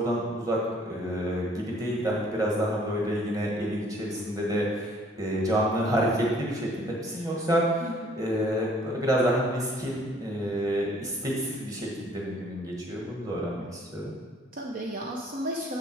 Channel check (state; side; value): normal; both; correlation 0.59